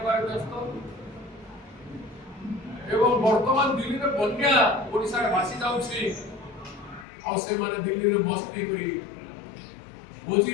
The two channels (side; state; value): right; drops out; at 7.1 s